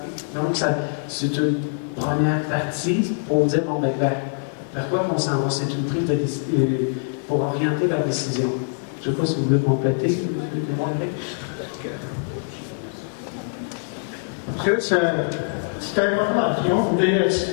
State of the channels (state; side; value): silent; right; digital silence